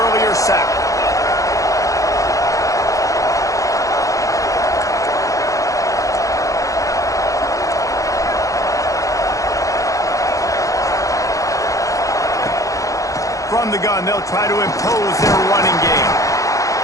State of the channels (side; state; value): right; late; 0.16 ms